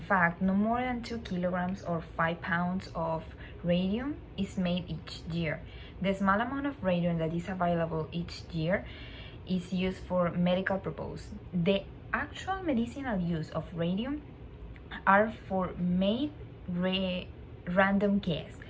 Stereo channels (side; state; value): both; identical; correlation 1.00